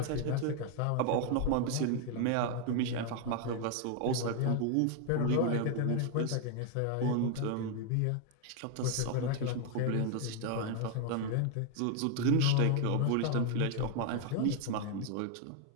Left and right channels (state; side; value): different; both; correlation 0.00